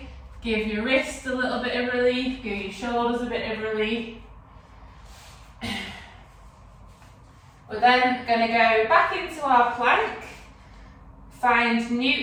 Give your wrists a little bit of relief, give your shoulders a bit of relief. We're then going to go back into our plank, find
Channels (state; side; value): identical; both; correlation 1.00